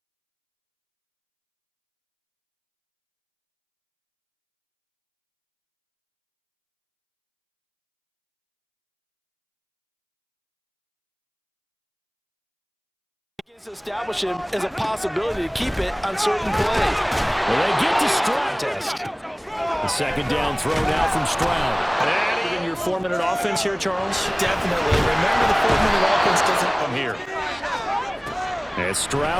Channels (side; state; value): both; identical; correlation 1.00